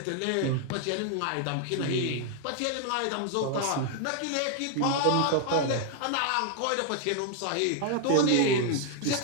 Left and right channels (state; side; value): different; both; correlation 0.00